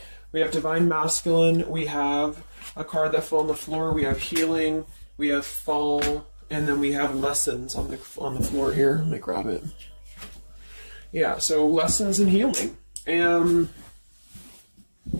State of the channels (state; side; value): inverted; both; correlation -1.00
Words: We have Divine Masculine, we have a card that fell on the floor, we have healing, we have fall, and then we have lessons on the floor here. Let me grab it. Yeah, so lessons and healing. And